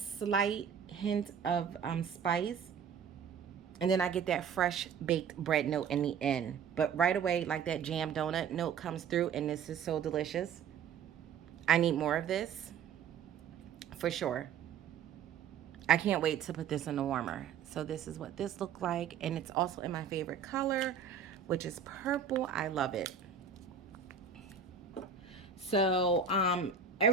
hint of spice. And then I get that fresh baked bread note in the end. But right away, like that jam donut note comes through, and this is so delicious. I need more of this for sure. I can't wait to put this in the warmer. So this is what this looked like. And it's also in my favorite color, which is purple. I love it. So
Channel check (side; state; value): left; quieter; 6.9 dB